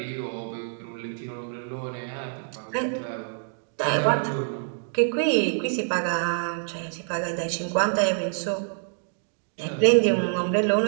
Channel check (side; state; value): left; silent; digital silence